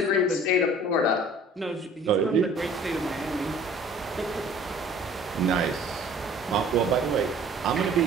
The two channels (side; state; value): both; normal; correlation 0.50